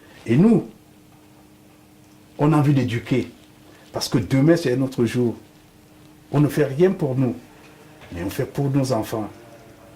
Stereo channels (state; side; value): identical; both; correlation 1.00